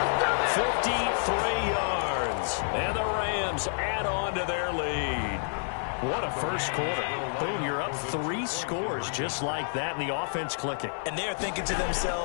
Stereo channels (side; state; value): right; silent; digital silence